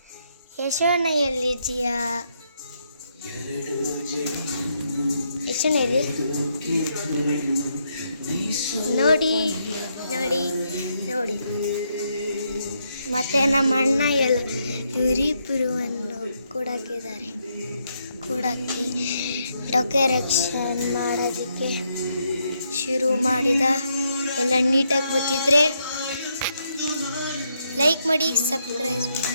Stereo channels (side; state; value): both; inverted; correlation -0.77